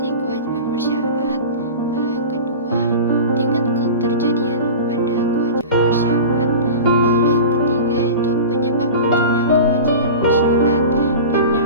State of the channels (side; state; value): both; inverted; correlation -0.33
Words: kewajiban bersyarat, lalu yang kedua tingkat keterjadian pada kewajiban bersyarat, lalu yang ketiga itu penyebab munculnya kewajiban bersyarat, dan